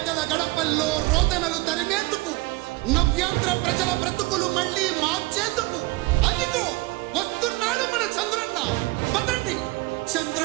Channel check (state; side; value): quieter; left; 22.0 dB